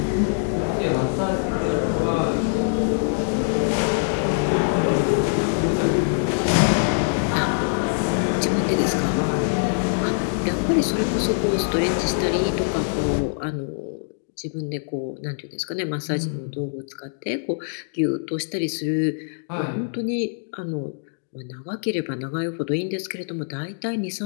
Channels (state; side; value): silent; right; digital silence